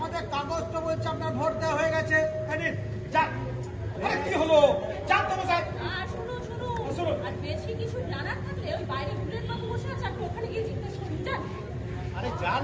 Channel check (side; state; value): both; identical; correlation 1.00